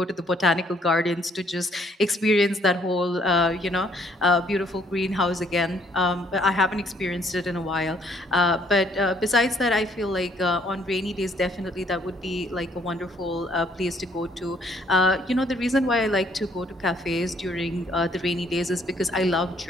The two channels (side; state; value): both; normal; correlation 0.65